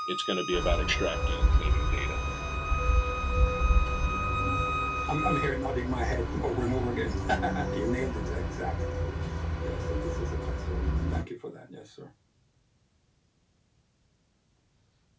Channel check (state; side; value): identical; both; correlation 1.00